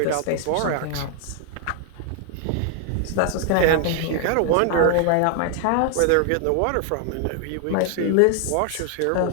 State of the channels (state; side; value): different; both; correlation 0.00